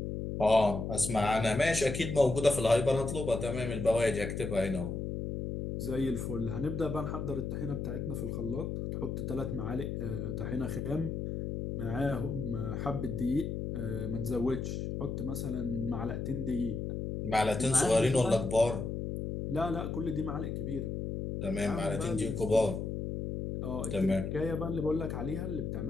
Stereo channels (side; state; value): left; noise; hum, 3 dB below the sound